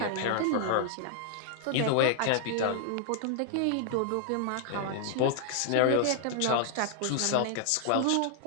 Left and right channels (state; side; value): different; both; correlation 0.00